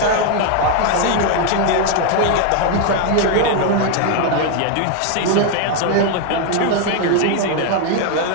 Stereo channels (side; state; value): both; different; correlation 0.00